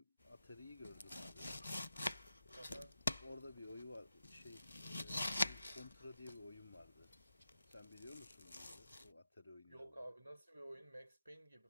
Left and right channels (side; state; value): both; inverted; correlation -0.91